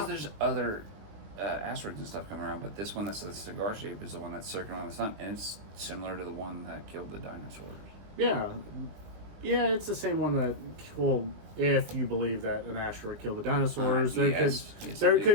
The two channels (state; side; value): late; left; 20 ms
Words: there's other asteroids and stuff coming around, but this one that's a cigar shape is the one that's circling around the sun, and it's similar to the one that killed the dinosaurs. Yeah, it's the same one that, well, if you believe that an asteroid killed the dinosaurs, there